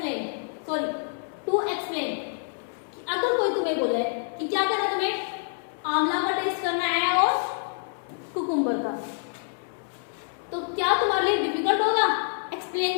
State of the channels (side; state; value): right; silent; 60 dB below the other